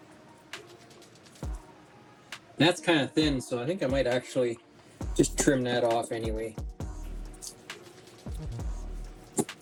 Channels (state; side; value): identical; both; correlation 1.00